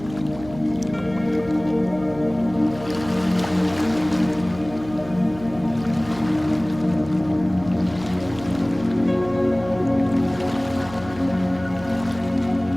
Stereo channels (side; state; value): right; noise; hum, 16 dB below the sound